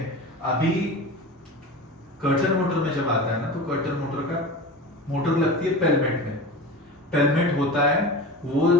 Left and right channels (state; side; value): normal; both; correlation 0.31